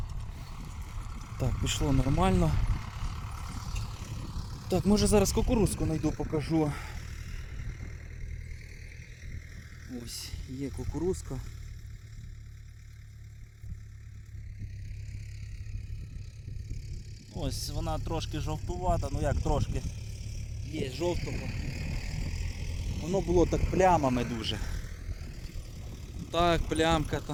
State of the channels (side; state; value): both; identical; correlation 1.00